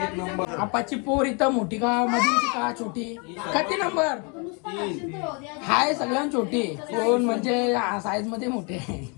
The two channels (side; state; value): right; quieter; 33.7 dB